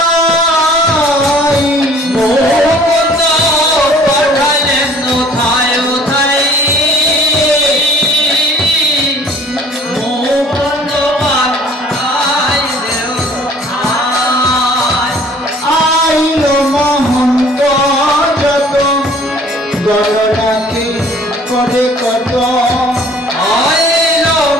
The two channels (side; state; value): both; normal; correlation 0.54